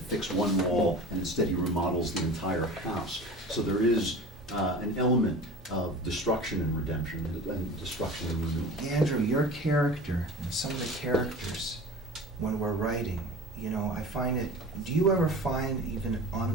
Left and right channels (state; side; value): normal; both; correlation 0.37